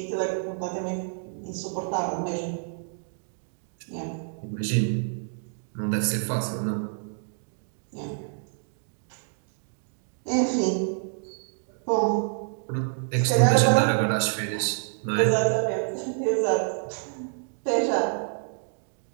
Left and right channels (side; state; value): left; silent; digital silence